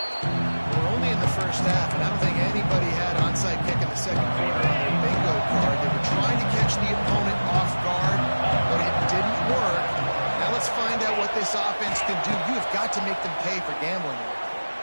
We're only in the first half, and I don't think anybody had onside kick in the second quarter on their bingo card. They were trying to catch the opponent off guard, but it didn't work. Now let's find out what this offense can do. You have got to make them pay for gambling here.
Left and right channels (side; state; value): both; inverted; correlation -1.00